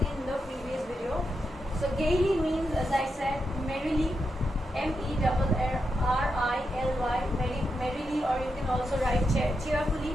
in the previous video. So gaily means, as I said, merrily, merrily, merrily, or you can also write cheerfully.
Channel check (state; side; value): normal; both; correlation 0.86